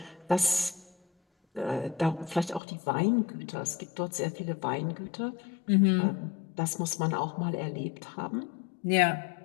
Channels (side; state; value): right; drops out; at 2.6 s